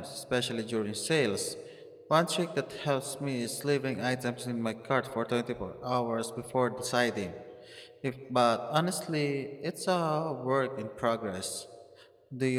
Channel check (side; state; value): both; identical; correlation 1.00